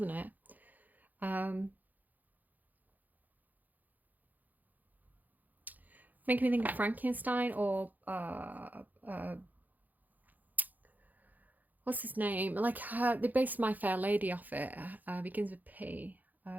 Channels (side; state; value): left; late; 0.083 ms